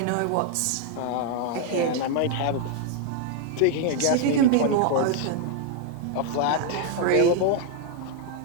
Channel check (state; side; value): different; both; correlation 0.00